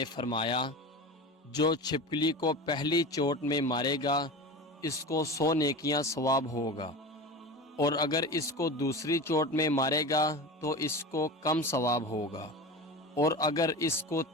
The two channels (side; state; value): both; normal; correlation 0.29